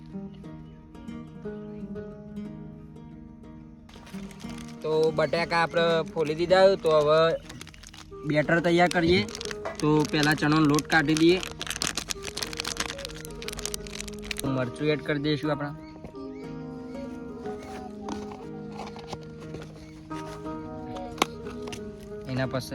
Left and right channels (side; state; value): both; identical; correlation 1.00